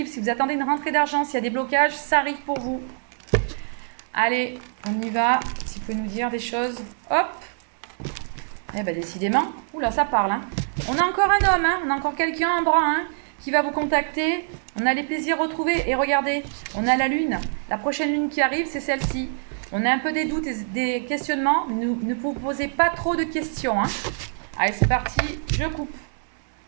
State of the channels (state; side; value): silent; left; digital silence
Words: Si vous attendez une rentrée d'argent, s'il y a des blocages, ça arrive pour vous. Allez, on y va. Si vous pouvez nous dire des choses, hop. Eh ben décidément, oula, ça parle. Hein. On a encore un homme, hein. On a encore quelqu'un en bras, hein, qui va vous contacter. On a les plaisirs retrouvés. Et regardez, on a la lune. La prochaine lune qui arrive, c'est celle-ci. On a un peu des doutes et des questionnements. Ne vous posez pas trop de questions. Hein. Allez, c'est parti. Je coupe.